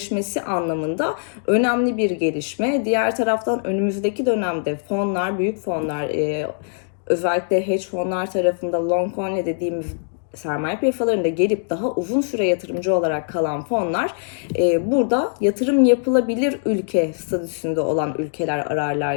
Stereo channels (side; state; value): right; silent; digital silence